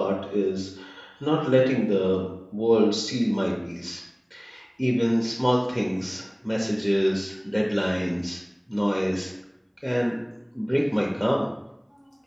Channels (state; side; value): identical; both; correlation 1.00